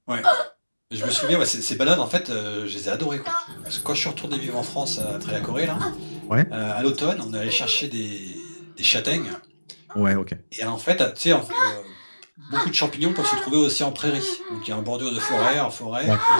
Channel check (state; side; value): inverted; both; correlation -1.00